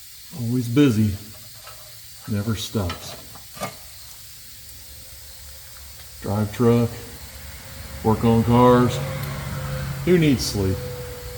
Always busy, never stops. Drive truck, work on cars. Who needs sleep?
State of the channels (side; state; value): both; identical; correlation 1.00